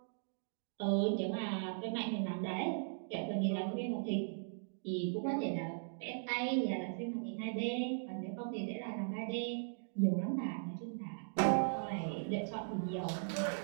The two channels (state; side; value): silent; left; digital silence